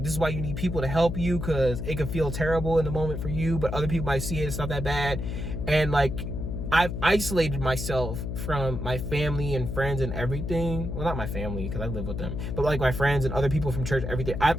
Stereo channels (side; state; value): left; noise; hum, 4 dB below the sound